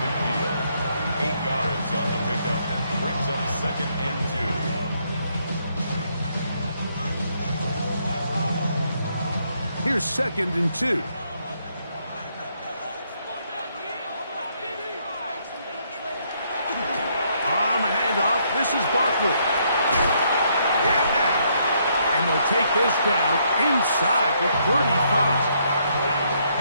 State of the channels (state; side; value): inverted; both; correlation -0.72